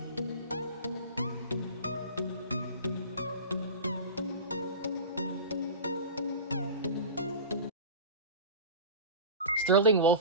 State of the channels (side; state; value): both; inverted; correlation -0.32